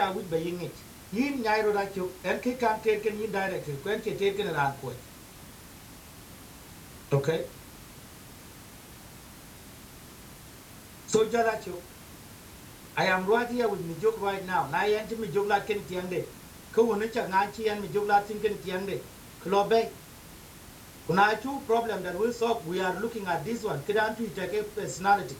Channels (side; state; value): both; identical; correlation 1.00